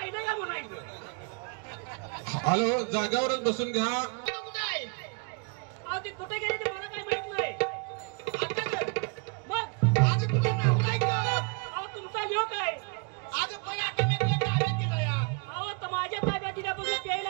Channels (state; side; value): quieter; left; 35.6 dB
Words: का म्हणायचं? हॅलो, जागावरच बसून घ्या. तू कुठं आहे अहो ती कुठे गेली ते मला काय माहित नाही. आता गं. मग आज तुझं नाव नाही का अहो तुमचा ह्यो काय? आज पण आता मी तुला ताब्यात दिलं या अहो तर माझ्या ताब्यात दिल्यापासून